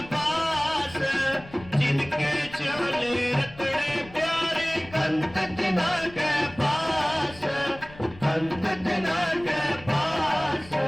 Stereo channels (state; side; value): noise; left; rumble, 19 dB below the sound